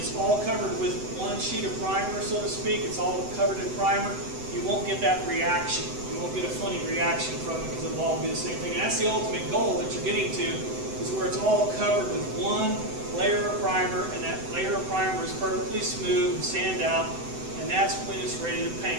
all covered with one sheet of primer, so to speak, it's all covered in primer, you won't get that reaction. You won't get a funny reaction from it because it'll all be the same thing. And that's the ultimate goal that you're getting to, is where it's all covered with one layer of primer, and that layer of primer is perfectly smooth and sand out, and that's when it's ready to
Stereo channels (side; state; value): left; late; 7.9 ms